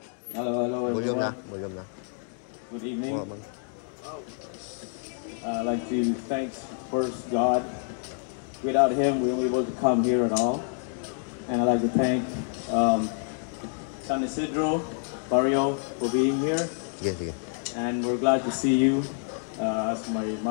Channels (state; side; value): silent; right; 56 dB below the other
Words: Hello. Volume na. Good evening. I'd like to thank first God. Without Him, we won't be able to come here at all. And I'd like to thank San Isidro, Barrio, for being here. Sige. And we're glad to see you. As my